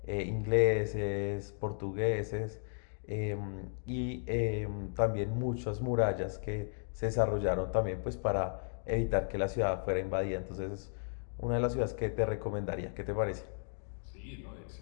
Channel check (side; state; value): right; silent; 55 dB below the other